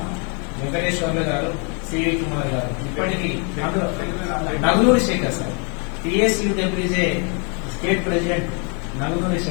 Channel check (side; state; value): right; quieter; 36.8 dB